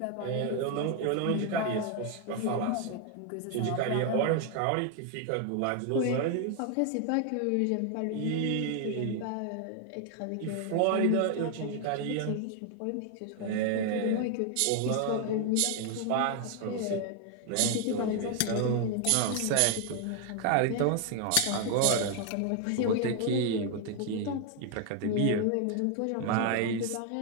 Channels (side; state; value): both; different; correlation 0.00